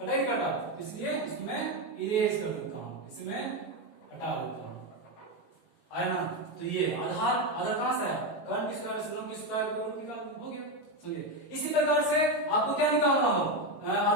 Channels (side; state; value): right; late; 18 ms